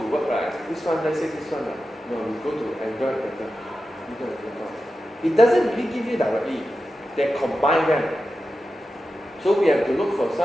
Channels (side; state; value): both; normal; correlation 0.91